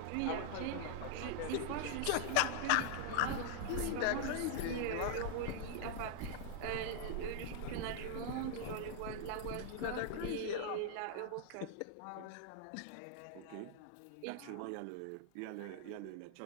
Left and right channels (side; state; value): both; different; correlation 0.00